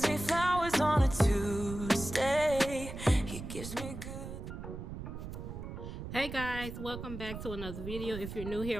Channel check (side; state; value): right; noise; rumble, 8 dB below the sound